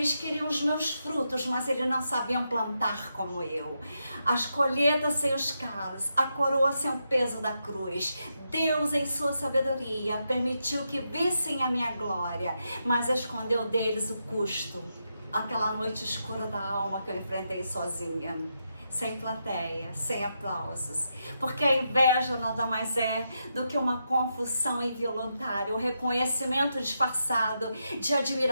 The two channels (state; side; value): inverted; both; correlation -0.84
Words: queriam os meus frutos, mas eles não sabiam plantar como eu. As colheitas sem os calos, a coroa sem o peso da cruz. Deus, em sua sabedoria, permitiu que vissem a minha glória, mas escondeu deles o custo. Aquela noite escura da alma que eu enfrentei sozinha, sem plateia, sem aplausos, porque a inveja nada mais é do que uma confusão involuntária, um reconhecimento disfarçado de